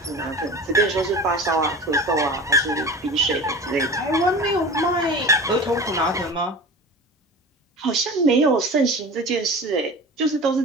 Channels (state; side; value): normal; both; correlation 0.34